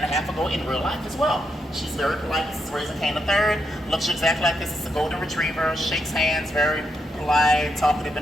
a half ago in real life as well. She's very polite. This is Razor Cane III. Looks exactly like this. It's a golden retriever. Shakes hands, very polite, talkative,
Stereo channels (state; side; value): normal; both; correlation 0.81